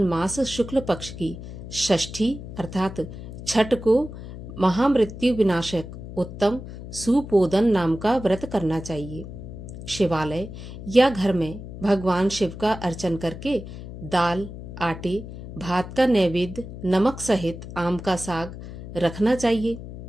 मास शुक्ल पक्ष की षष्ठी अर्थात छठ को महामृत्यु विनाशक उत्तम सुपोदन नाम का व्रत करना चाहिए। शिवालय या घर में भगवान शिव का अर्चन करके दाल, आटे, भात का नैवेद्य, नमक सहित आम का साग रखना चाहिए।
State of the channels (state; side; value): noise; left; hum, 11 dB below the sound